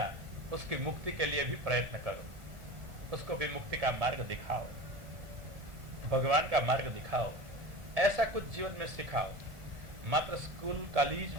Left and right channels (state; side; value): late; left; 1.4 ms